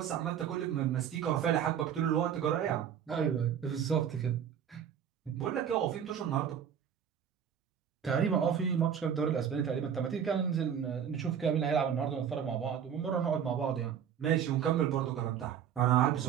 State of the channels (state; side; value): quieter; left; 8.5 dB